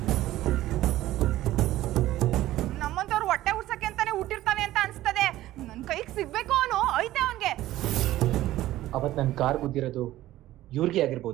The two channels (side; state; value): left; quieter; 15.1 dB